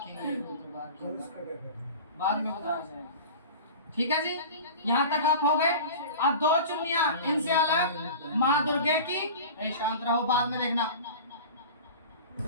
वो तो कलश का क्या करना है? बाद में बताया जाएगा। ठीक है जी, यहाँ तक आप हो गए। अब 2 चुन्नियां इनसे अलग माँ दुर्गे की, शांत रहो, बाद में देखना।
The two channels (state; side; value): inverted; both; correlation -0.35